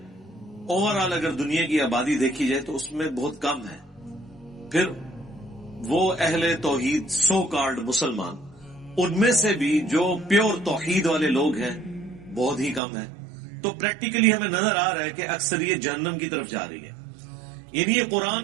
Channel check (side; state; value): left; drops out; at 12.8 s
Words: اوورآل اگر دنیا کی آبادی دیکھی جائے تو اس میں بہت کم ہے، پھر وہ اہل توحید سو کالڈ مسلمان، ان میں سے بھی جو پیور توحید والے لوگ ہیں بہت ہی کم ہے۔ تو پریکٹیکلی ہمیں نظر آ رہا ہے کہ اکثریت جہنم کی طرف جا رہی ہے، یعنی یہ